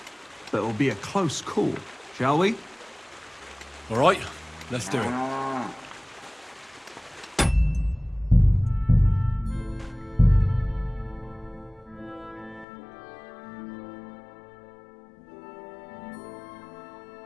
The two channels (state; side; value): drops out; right; at 12.7 s